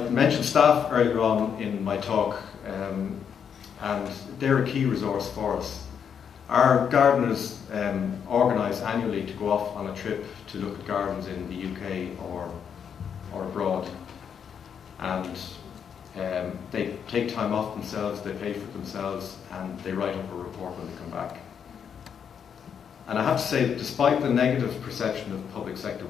mentioned staff earlier on in my talk, and they're a key resource for us. Our gardeners organise annually to go off on a trip to look at gardens in the UK or abroad, and they take time off themselves, they pay for themselves, and they write up a report when they come back. And I have to say that despite the negative perception of public sector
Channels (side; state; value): right; quieter; 7.6 dB